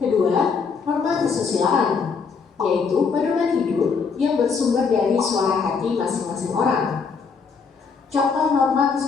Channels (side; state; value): right; quieter; 5.4 dB